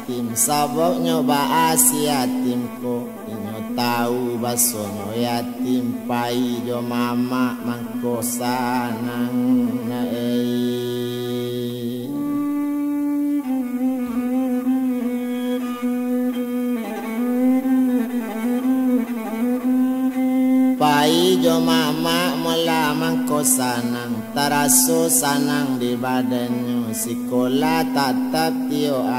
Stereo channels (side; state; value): both; identical; correlation 1.00